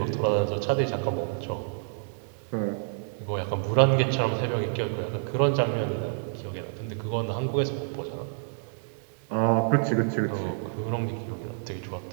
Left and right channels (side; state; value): left; silent; 59 dB below the other